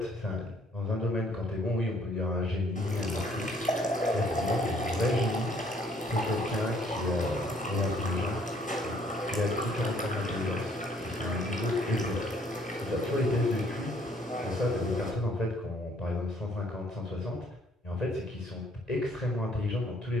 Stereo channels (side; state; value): both; normal; correlation 0.63